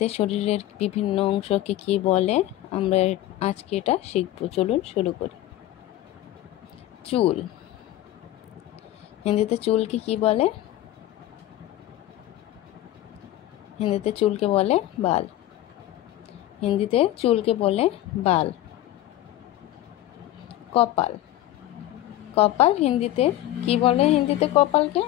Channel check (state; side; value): quieter; right; 14.2 dB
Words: শরীরের বিভিন্ন অংশকে কি বলে আমরা আজকে এটা শিখব। চলুন শুরু করি। চুল। হিন্দিতে চুলকে কি বলে? হিন্দিতে চুলকে বলে বাল। হিন্দিতে চুলকে বলে বাল। কপাল। কপাল হিন্দিতে কি বলে? হিন্দিতে কপালকে